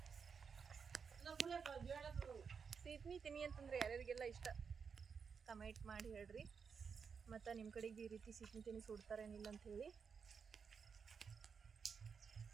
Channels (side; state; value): left; quieter; 6.1 dB